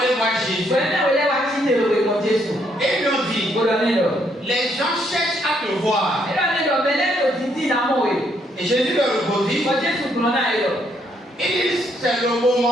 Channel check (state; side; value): normal; both; correlation 0.72